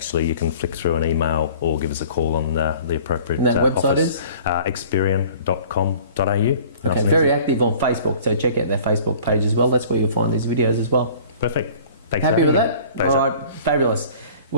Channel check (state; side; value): inverted; both; correlation -0.48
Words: you can flick through an email or give us a call on the appropriate office. And that website is? Experian.com.au. Okay, very active on Facebook, so check out their Facebook page as well. That's where you'll find these videos as well. Perfect. Thanks Happy for with having that? me. Pleasure. All right, fabulous.